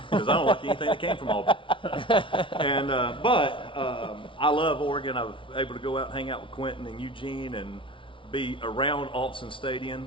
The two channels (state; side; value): late; right; 0.25 ms